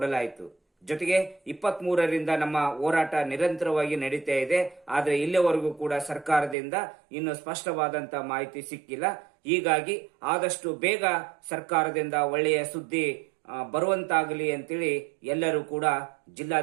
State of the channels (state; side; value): drops out; left; at 6.6 s